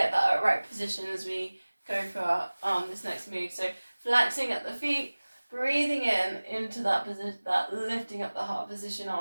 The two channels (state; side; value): inverted; both; correlation -1.00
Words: that right position as we go for this next move. So flexing at the feet, breathing in into that position, that lifting up the heart position,